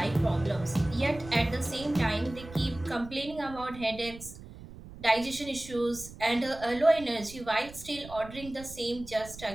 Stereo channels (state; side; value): noise; right; rumble, 16 dB below the sound